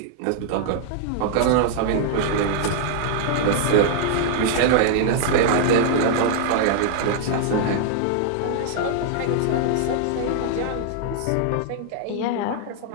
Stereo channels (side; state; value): both; different; correlation -0.01